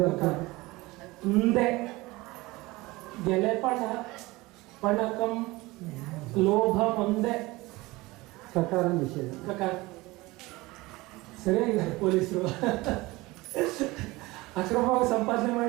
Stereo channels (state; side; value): quieter; left; 21.2 dB